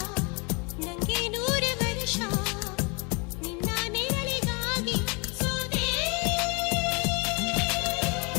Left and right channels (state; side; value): quieter; right; 30.8 dB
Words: ನಂಗೆ 100 ವರ್ಷ, ನಿನ್ನ ನೆರಳಿಗಾಗಿ ಸೋದೆ.